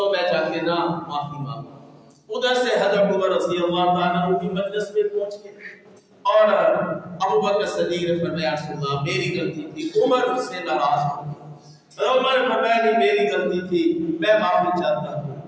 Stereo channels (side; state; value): both; identical; correlation 1.00